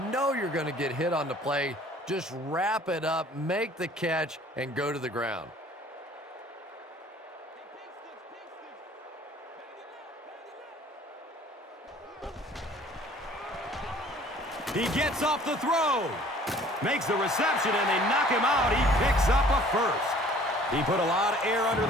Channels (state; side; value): normal; both; correlation 0.53